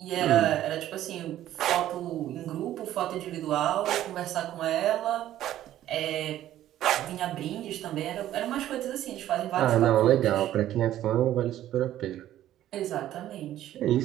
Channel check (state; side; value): quieter; left; 12.8 dB